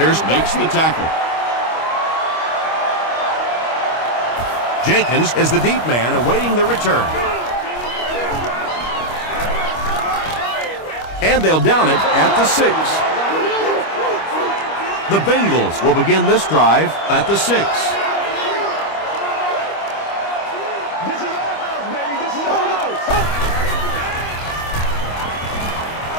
makes the tackle. Jenkins is the deep man awaiting the return. And they'll down it at the 6. The Bengals will begin this drive at the 6.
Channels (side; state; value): right; late; 25 ms